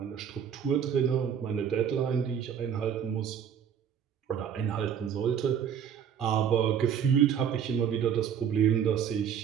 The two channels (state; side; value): quieter; left; 8.2 dB